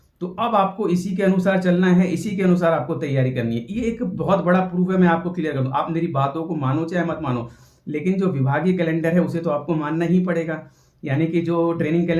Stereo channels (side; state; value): both; identical; correlation 1.00